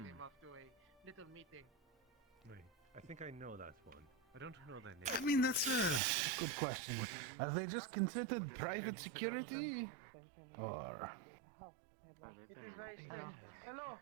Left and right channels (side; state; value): left; drops out; at 6.0 s